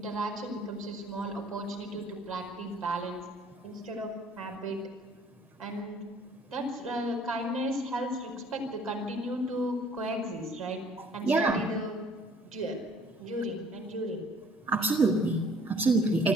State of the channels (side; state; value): both; normal; correlation 0.57